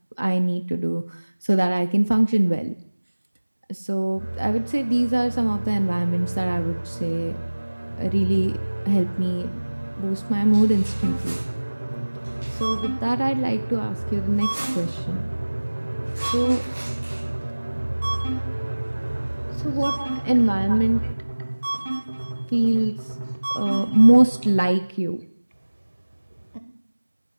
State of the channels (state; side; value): inverted; both; correlation -1.00